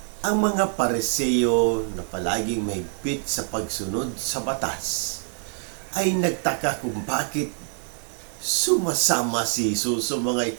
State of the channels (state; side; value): silent; left; 56 dB below the other